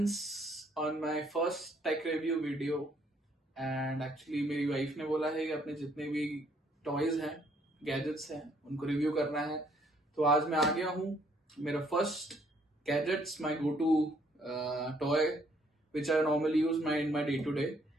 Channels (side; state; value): both; normal; correlation 0.66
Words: on my first tech review video and actually मेरी wife ने बोला है कि अपने जितने भी टॉयज हैं गैजेट्स हैं उनको रिव्यू करना है। तो आज मैं आ गया हूँ। मेरा first gadgets my go to toy which I normally use in my day to day